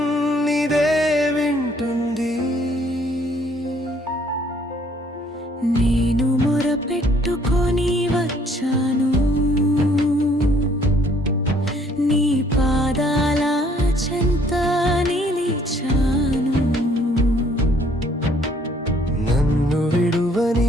నీదే వింటుంది. నేను మొరపెట్టుకొని వచ్చాను, నీ పాదాల చెంత నిలిచాను. నన్ను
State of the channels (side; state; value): both; normal; correlation 0.62